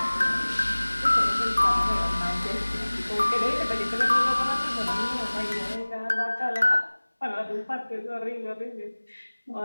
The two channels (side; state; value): both; inverted; correlation -1.00